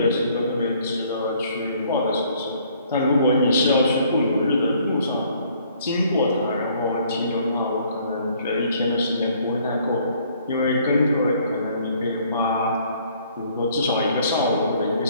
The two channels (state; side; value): inverted; both; correlation -0.61